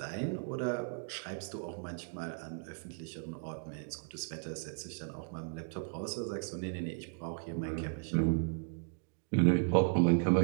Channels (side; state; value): left; silent; 54 dB below the other